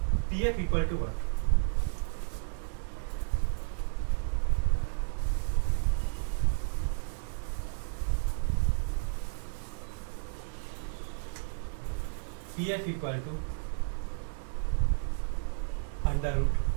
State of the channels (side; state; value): left; silent; 56 dB below the other